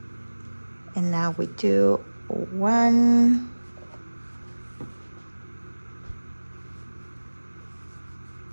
And now we do 1,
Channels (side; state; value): both; inverted; correlation -1.00